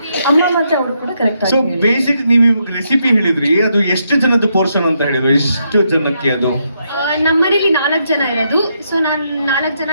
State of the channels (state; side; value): inverted; both; correlation -0.78